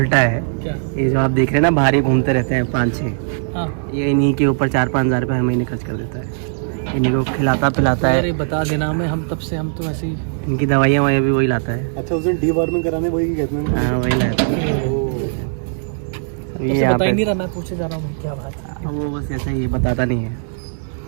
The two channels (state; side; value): silent; left; digital silence